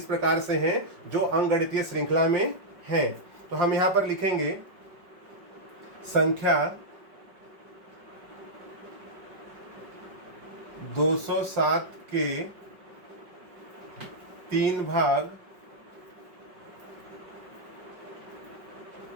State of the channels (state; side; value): late; left; 5.3 ms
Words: प्रकार से हैं जो अंकगणितीय श्रृंखला में हैं। तो हम यहाँ पर लिखेंगे संख्या 207 के 3 भाग